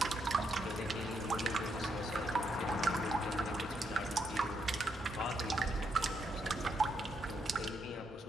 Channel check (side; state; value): both; normal; correlation 0.78